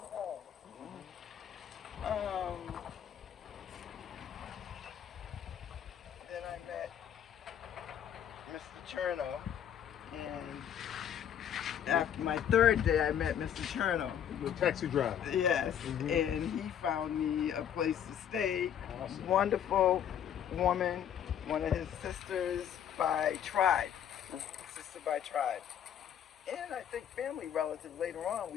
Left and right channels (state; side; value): quieter; right; 9.4 dB